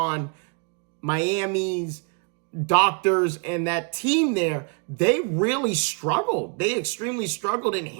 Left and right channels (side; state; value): left; quieter; 36.9 dB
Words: Miami's doctors and that team there. They really struggled. They extremely struggled in